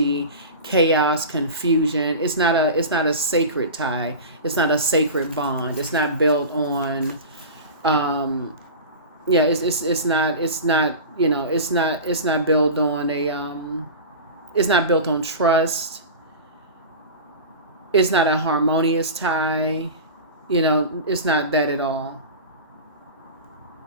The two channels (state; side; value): inverted; both; correlation -0.30